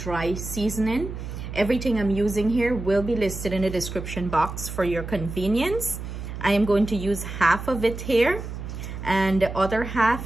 seasoning. Everything I'm using here will be listed in the description box for your convenience. I am going to use half of it here, and the other half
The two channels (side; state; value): right; noise; hum, 8 dB below the sound